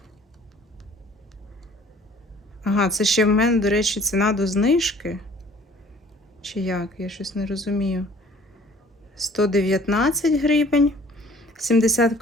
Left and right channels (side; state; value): both; normal; correlation 0.53